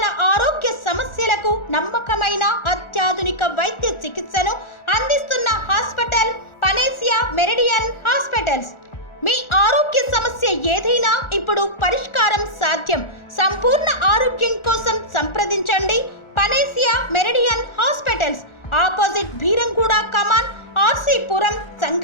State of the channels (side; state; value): right; late; 1.4 ms